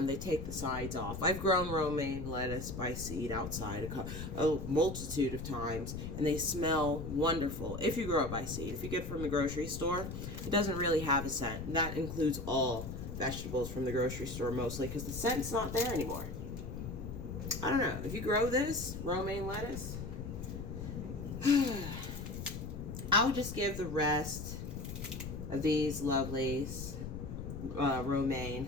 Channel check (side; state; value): left; noise; rumble, 7 dB below the sound